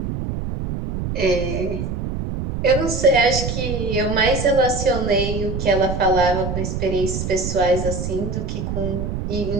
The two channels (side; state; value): right; noise; rumble, 4 dB below the sound